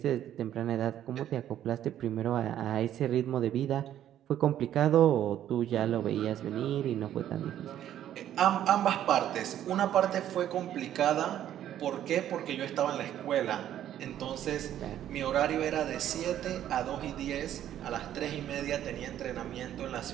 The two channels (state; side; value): quieter; left; 11.3 dB